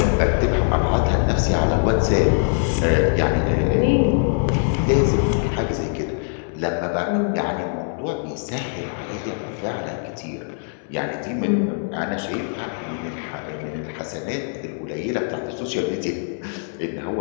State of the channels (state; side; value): silent; right; digital silence